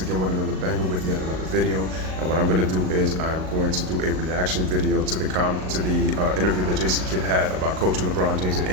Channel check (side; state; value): left; late; 38 ms